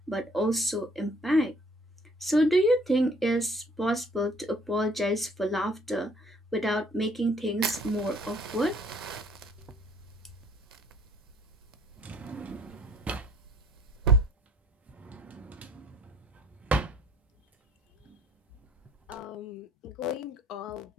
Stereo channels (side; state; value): both; normal; correlation 0.59